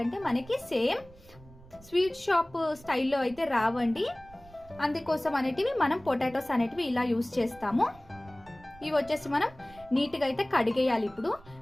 మనకి సేమ్ స్వీట్ షాప్ స్టైల్లో అయితే రావండి. అందుకోసం అనేటివి మనం పొటాటోస్ అనేటివి ఇలా యూస్ చేస్తాము. ఇవి వచ్చేసి మనం నీట్గా అయితే కడిగేయాలి.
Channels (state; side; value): noise; right; rumble, 23 dB below the sound